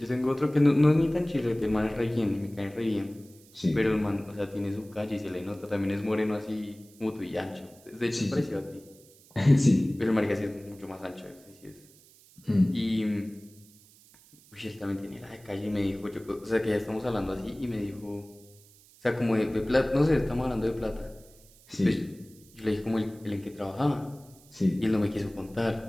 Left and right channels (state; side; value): noise; right; hiss, 26 dB below the sound